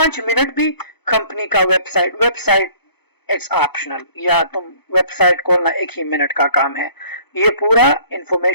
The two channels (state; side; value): late; right; 0.98 ms